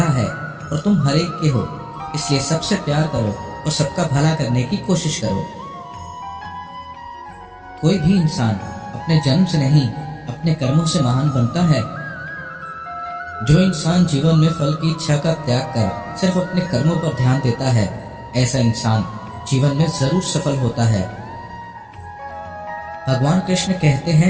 है और तुम हर एक के हो। इसलिए सबसे प्यार करो और सबका भला करने की कोशिश करो। कोई भी इंसान अपने जन्म से नहीं, अपने कर्मों से महान बनता है। जो इंसान जीवन में फल की इच्छा का त्याग कर सिर्फ अपने कर्मों पर ध्यान देता है, ऐसा इंसान जीवन में जरूर सफल होता है। भगवान कृष्ण कहते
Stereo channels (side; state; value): both; identical; correlation 1.00